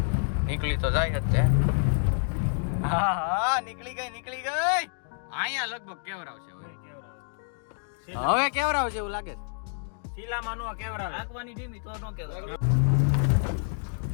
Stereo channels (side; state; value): right; silent; digital silence